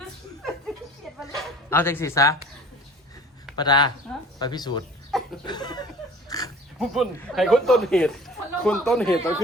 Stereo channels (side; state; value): both; normal; correlation 0.47